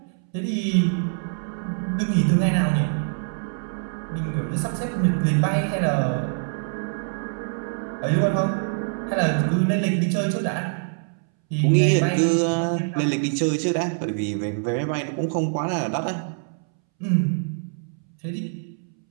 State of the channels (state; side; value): silent; left; 62 dB below the other